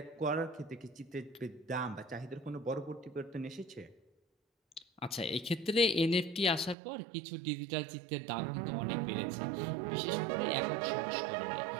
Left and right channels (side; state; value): left; drops out; at 6.8 s